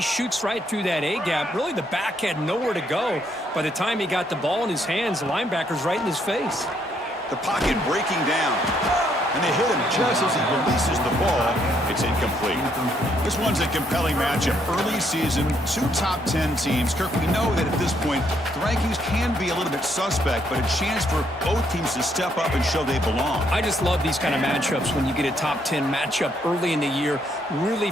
shoots right through that A-gap. Really, the back had nowhere to go. By the time he got the ball in his hands, the linebacker's right in his face. The pocket breaking down. And they hit him just as he releases the ball. It's incomplete. This one's a compelling matchup. Early season, two top 10 teams. Kirk, we know that at this point, the rankings can be a little bit suspect, but a chance for both teams to step up and show they belong. I just love these kind of matchups when you get a top 10 matchup early in the year. Really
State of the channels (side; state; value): both; normal; correlation 0.72